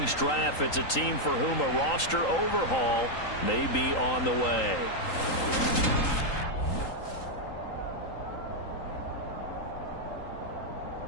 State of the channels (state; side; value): late; right; 3.8 ms